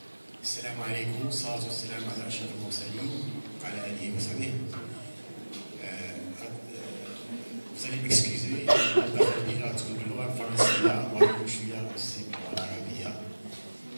السلام عليكم، والصلاة والسلام على أشرف المرسلين وعلى آله وصحبه. Vous allez m'excuser,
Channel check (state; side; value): inverted; both; correlation -1.00